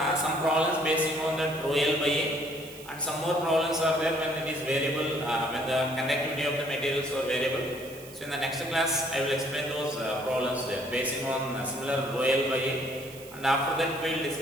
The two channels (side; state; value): right; noise; hiss, 18 dB below the sound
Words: some problems basing on the rho L by A, and some more problems are there when it is variable, when the conductivity of the materials are variable. So in the next class I will explain those problems there basing on similar rho L by A, and after that we will